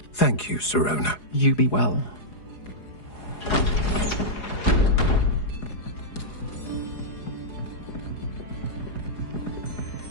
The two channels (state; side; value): late; right; 4.8 ms